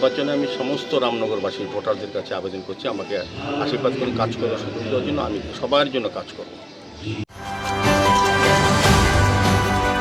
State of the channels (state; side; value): identical; both; correlation 1.00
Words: আমি সমস্ত রামনগরবাসী ভোটারদের কাছে আবেদন করছি আমাকে আশীর্বাদ করে কাজ করার সুযোগ দেওয়ার জন্য। আমি সবার জন্য কাজ করব।